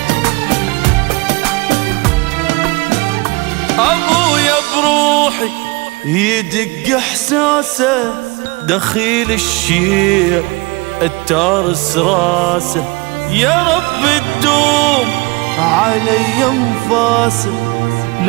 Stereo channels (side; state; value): left; quieter; 25.2 dB